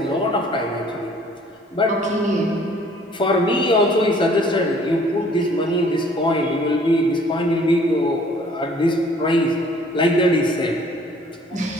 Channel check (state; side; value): normal; both; correlation 0.56